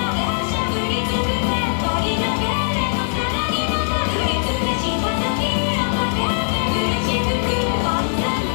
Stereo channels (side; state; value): right; silent; 65 dB below the other